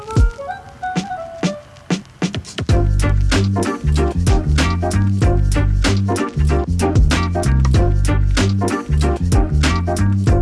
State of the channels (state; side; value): identical; both; correlation 1.00